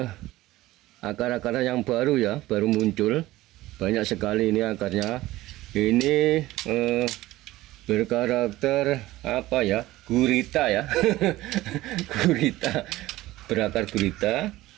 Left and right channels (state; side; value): quieter; left; 17.1 dB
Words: akar-akar yang baru ya, baru muncul banyak sekali ini akarnya. Ini berkarakter apa ya, gurita ya. Gurita, berakar gurita.